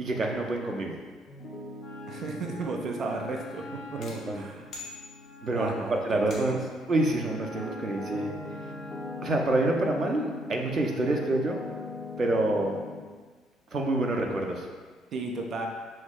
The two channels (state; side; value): normal; both; correlation 0.72